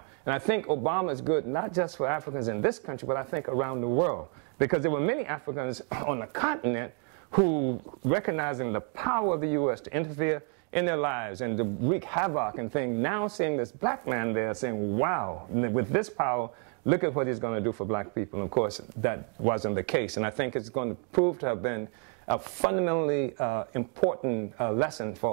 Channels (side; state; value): left; quieter; 40.0 dB